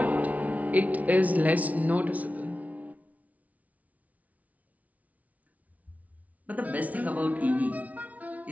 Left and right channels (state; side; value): late; left; 0.070 ms